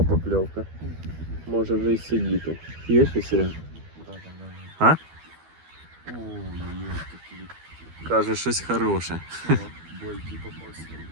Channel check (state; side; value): late; left; 12 ms